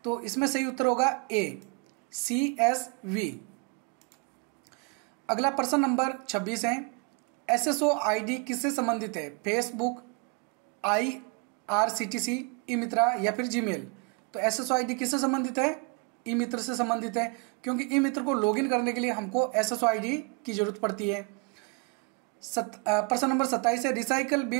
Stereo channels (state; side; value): quieter; left; 31.9 dB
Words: तो इसमें सही उत्तर होगा ए, CSV। अगला प्रश्न नंबर 26 है, SSO ID किससे संबंधित है, फेसबुक, IRCTC, ई मित्रा या फिर जीमेल। तो SSO ID किससे संबंधित है, ई मित्र से संबंधित है, क्योंकि ई मित्र को लॉगिन करने के लिए हमको SSO ID की जरूरत पड़ती है। प्रश्न नंबर 27 है, रिसाइकल